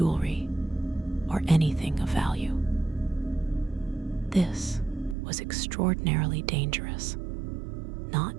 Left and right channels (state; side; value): drops out; left; at 5.2 s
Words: or anything of value. This was extraordinarily dangerous,